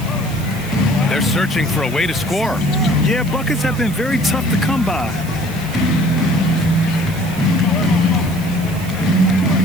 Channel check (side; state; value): right; noise; hiss, 17 dB below the sound